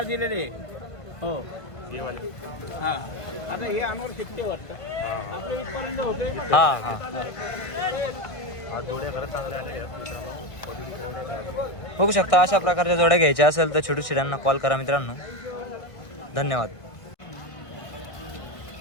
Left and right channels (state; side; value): late; right; 1.5 ms